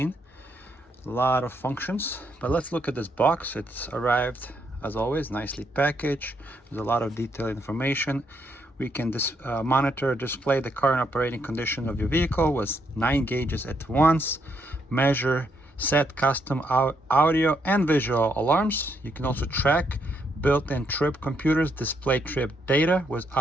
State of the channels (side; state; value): both; normal; correlation 0.75